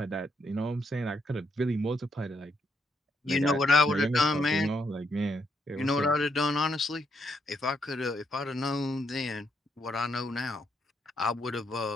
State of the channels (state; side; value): normal; both; correlation 0.76